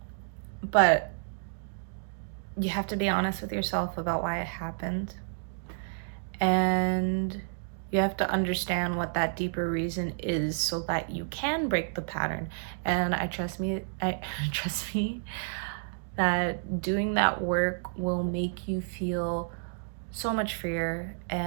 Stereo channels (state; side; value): silent; left; digital silence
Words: But you have to be honest with yourself about why it happened. And you have to understand what that deeper reason is so that you can break the pattern. And trust me that doing that work will make you feel so much freer,